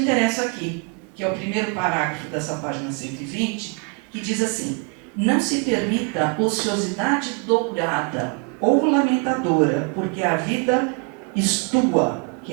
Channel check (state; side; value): quieter; left; 32.8 dB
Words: aqui, que é o primeiro parágrafo dessa página 120, que diz assim: não se permita ociosidade dourada ou lamentadora, porque a vida estua,